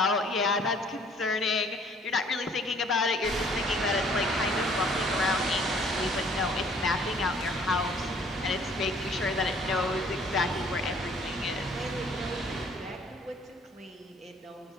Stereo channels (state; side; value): normal; both; correlation 0.57